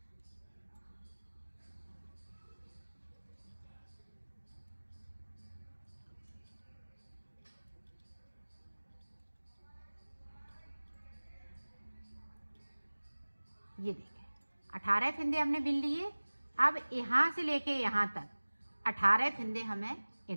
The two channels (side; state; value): both; inverted; correlation -1.00